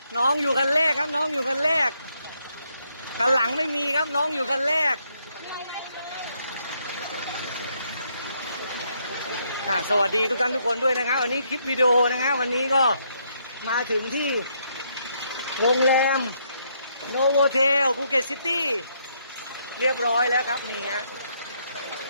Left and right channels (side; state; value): both; inverted; correlation -0.74